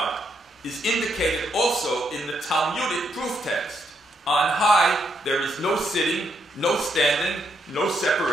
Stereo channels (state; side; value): normal; both; correlation 0.77